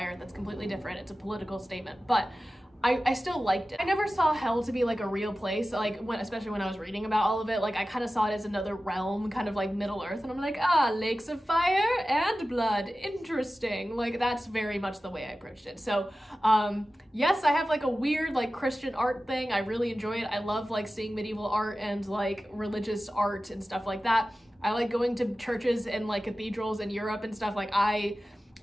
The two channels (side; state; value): both; normal; correlation 0.95